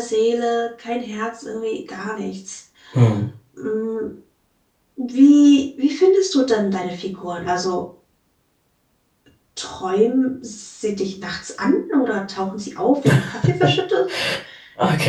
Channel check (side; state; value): both; identical; correlation 1.00